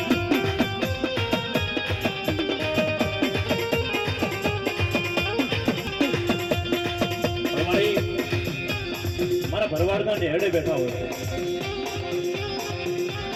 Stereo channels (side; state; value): both; identical; correlation 1.00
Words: ભરવાડના નેહડે બેઠા હોય